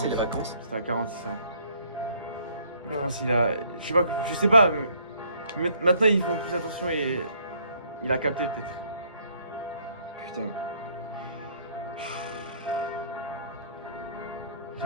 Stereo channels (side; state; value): both; inverted; correlation -0.63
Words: les vacances. C'était à 46 ans. Je Ouais. pense qu'il a. Je sais pas. Maintenant ils font plus attention et. Il a capté peut-être. Putain.